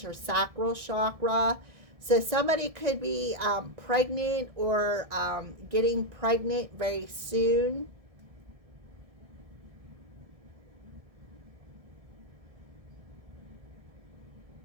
your sacral chakra. So somebody could be pregnant or getting pregnant very soon.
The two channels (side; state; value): left; late; 1.6 ms